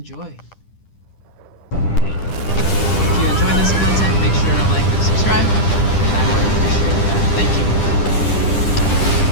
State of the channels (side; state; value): right; late; 10 ms